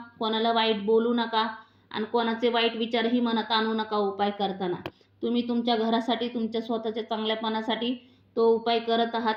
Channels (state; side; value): identical; both; correlation 1.00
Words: कोणाला वाईट बोलू नका आणि कोणाचे वाईट विचारही मनात आणू नका. उपाय करताना तुम्ही तुमच्या घरासाठी, तुमच्या स्वतःच्या चांगल्यापणासाठी तो उपाय करत आहात.